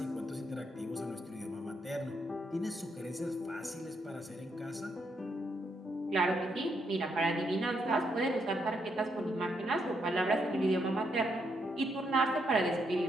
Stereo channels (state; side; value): normal; both; correlation 0.77